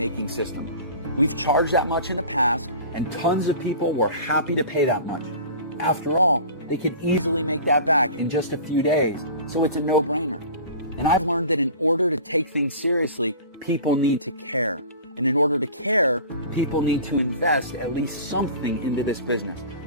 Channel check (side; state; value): both; inverted; correlation -0.39